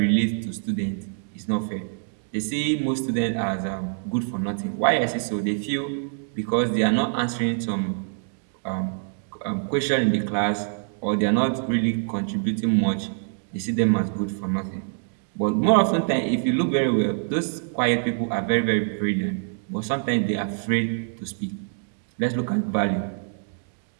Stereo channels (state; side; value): silent; left; digital silence